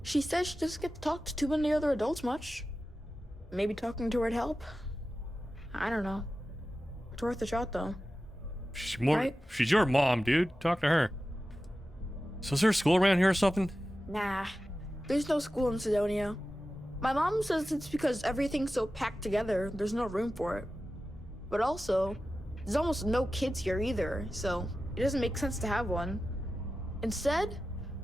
She says she doesn't get to talk to too many other adults much. Maybe talking to her'd help? I don't know. It's worth a shot, though. She's your mom, dude. Talk to her. So is there a school around here or something? Nah, there's no school in Sidonia. My mom says it's because everything's so packed together, there's no room for it. But also, there's almost no kids here either, so it doesn't make sense to have one. Instead,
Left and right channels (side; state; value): both; normal; correlation 0.94